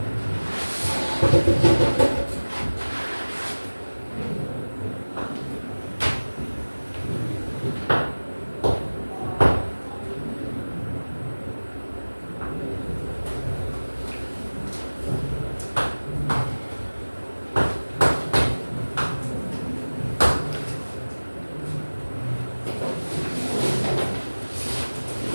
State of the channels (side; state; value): both; inverted; correlation -1.00